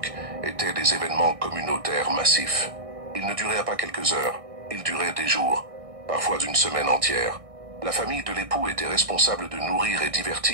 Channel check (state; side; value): late; left; 1.6 ms